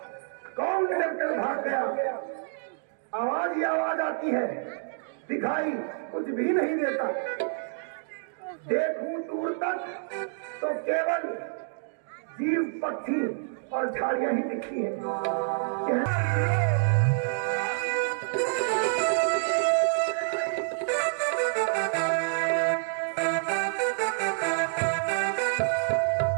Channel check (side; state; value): left; silent; digital silence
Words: कौन डर कर भाग गया? आवाज ही आवाज आती है, दिखाई कुछ भी नहीं देता। देखूं दूर तक तो केवल जीव, पक्षी और झाड़ियां ही दिखती हैं।